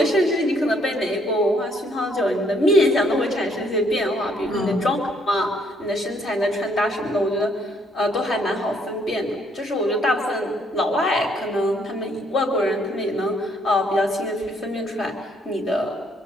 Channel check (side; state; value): both; normal; correlation 0.68